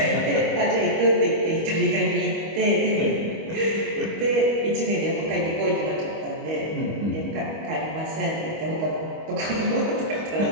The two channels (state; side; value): late; left; 25 ms